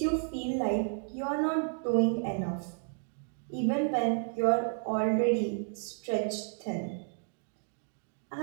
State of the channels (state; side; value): silent; left; 56 dB below the other